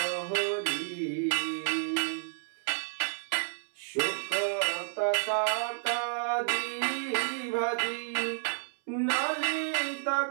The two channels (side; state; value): left; silent; 57 dB below the other